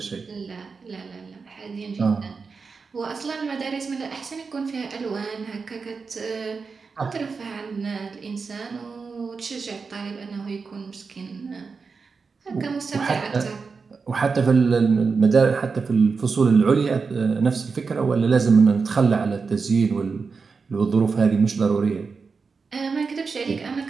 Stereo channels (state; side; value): quieter; left; 4.9 dB